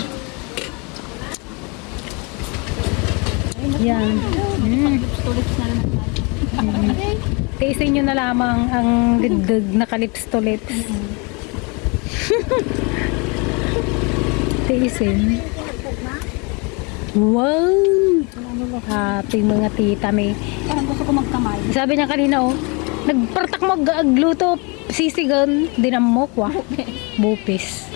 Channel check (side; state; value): right; quieter; 30.8 dB